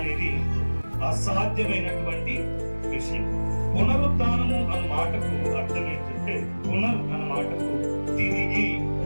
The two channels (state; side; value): inverted; both; correlation -1.00